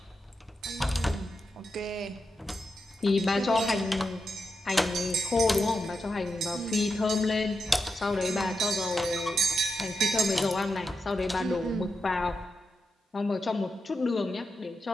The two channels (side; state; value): both; normal; correlation 0.87